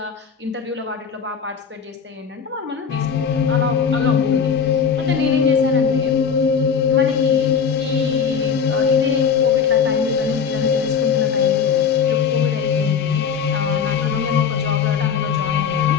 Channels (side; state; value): right; quieter; 6.7 dB